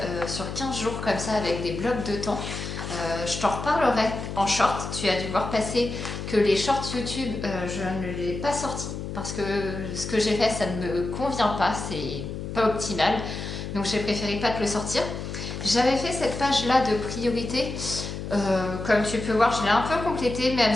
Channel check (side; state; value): left; noise; hum, 6 dB below the sound